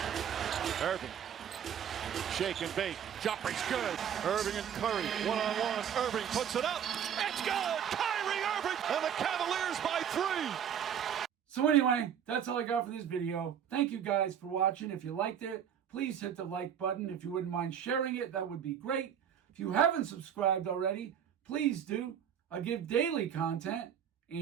Irving. Shake and bake. Jumper's good. Irving and Curry. One-on-one. Irving puts it up. It's good. Kyrie Irving. And the Cavaliers by 3. So anyway, that's all I got for this video. Thank you guys for watching. If you liked it, please hit the like button. If you wouldn't mind sharing it, that would be great. If you haven't subscribed already, please do. I give daily content.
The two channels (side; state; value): left; quieter; 8.8 dB